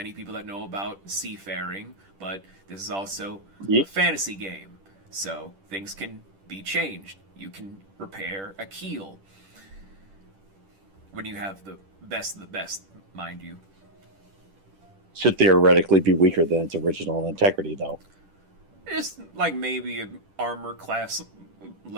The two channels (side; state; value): left; late; 10 ms